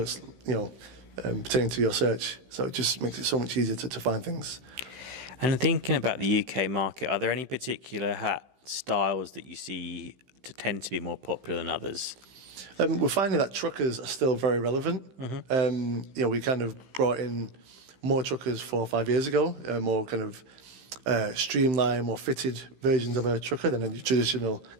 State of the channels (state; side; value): late; left; 15 ms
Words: pertaining to your search. So it just makes it so much easier to find things. And thinking about the UK market, are there any particular hat styles that you see to tend to be more popular than others? We're finding that truckers are still very relevant. We kind of brought in more truckers 4 or 5 years ago, more kind of streamlined, more fitted versions of a trucker than a traditional